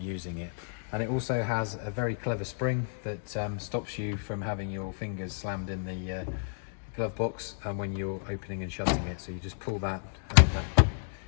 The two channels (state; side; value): silent; right; digital silence